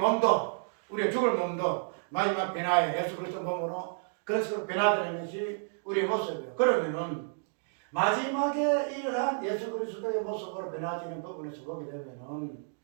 우리의 죽을 몸도 마지막 변화에 예수 그리스도 몸으로 그런 식으로 변화되는 것이 우리의 모습이에요. 그러면은 마지막에 이러한 예수 그리스도의 모습으로 변화되는 부분에서 보게 되면은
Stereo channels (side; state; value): left; silent; digital silence